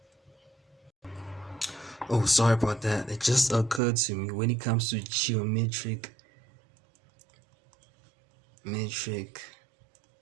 oh, sorry about that, it just occurred to me, when it comes to geometric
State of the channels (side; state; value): left; drops out; at 3.8 s